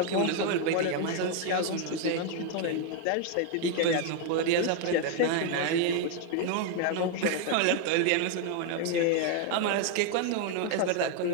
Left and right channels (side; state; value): both; different; correlation 0.01